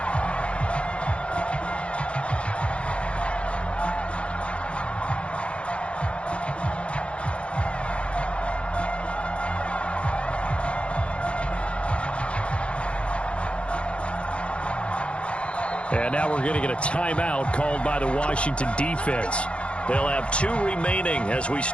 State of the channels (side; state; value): right; late; 0.060 ms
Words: And now we're going to get a timeout called by the Washington defense. They'll have 2 remaining as we